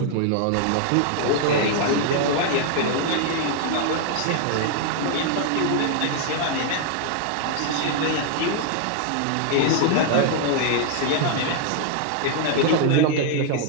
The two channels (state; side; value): different; both; correlation 0.00